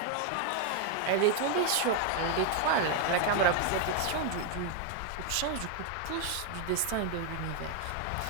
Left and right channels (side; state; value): both; different; correlation 0.01